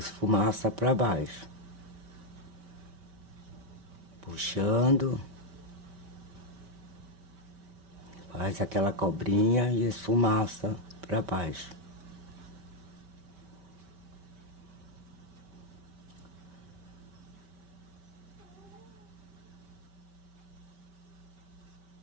pra baixo. Puxando. Faz aquela cobrinha e esfumaça pra baixo.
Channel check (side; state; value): left; late; 5.2 ms